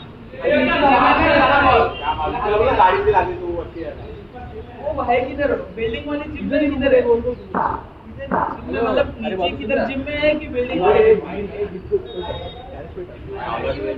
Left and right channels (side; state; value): both; identical; correlation 1.00